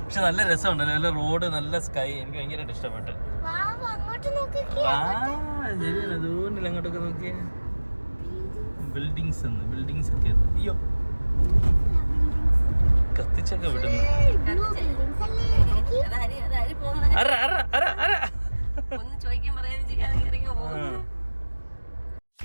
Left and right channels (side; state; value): both; inverted; correlation -1.00